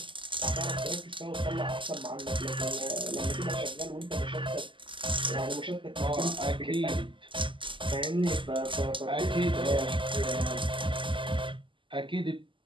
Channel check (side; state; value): left; late; 0.25 ms